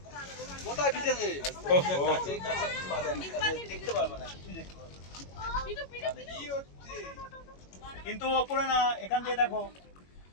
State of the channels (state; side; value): late; right; 21 ms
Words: কোথায় ভিজেছে? দেখতে পারবে না, কিছু দেখতে পারবে না। কিন্তু ওপরে না, এখান থেকে দেখো।